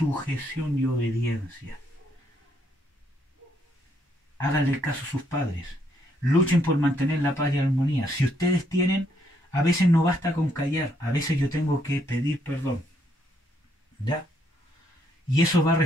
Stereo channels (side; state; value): both; normal; correlation 0.72